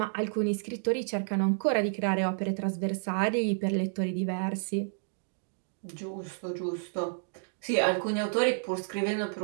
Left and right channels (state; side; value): silent; left; digital silence